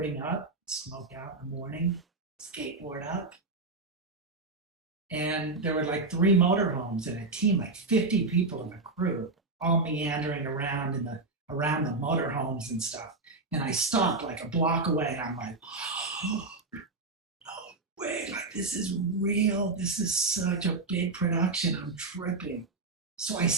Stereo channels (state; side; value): quieter; left; 3.5 dB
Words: up, smoke out in the morning, skateboard up. And there were like 3 motorhomes and a team, like 50 people in the crew, all meandering around around the motorhomes and stuff. And I stopped like a block away, and I'm like, oh, no way, like this is real. This is such a big production. I'm tripping. So I